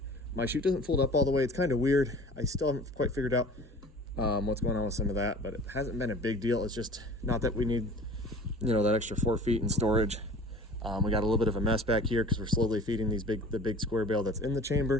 My chute doesn't fold up all the way. It's kind of weird. I still haven't quite figured out what's going on with some of that, but it hasn't been a big deal. It's just not that we need, that extra 4 feet in storage. We got a little bit of a mess back here because we're slowly feeding the big square bale that's in the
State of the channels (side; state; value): both; normal; correlation 0.44